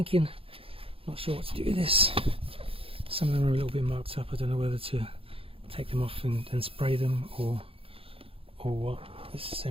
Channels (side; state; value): left; late; 0.27 ms